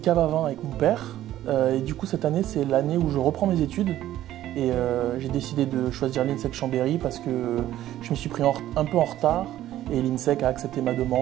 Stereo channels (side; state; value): left; quieter; 13.3 dB